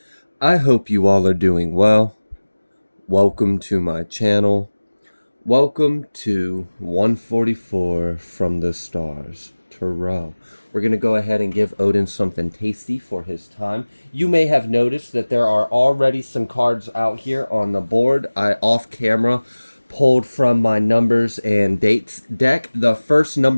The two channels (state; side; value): inverted; both; correlation -1.00